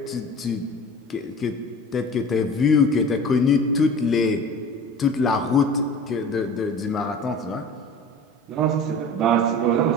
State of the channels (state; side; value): normal; both; correlation 0.39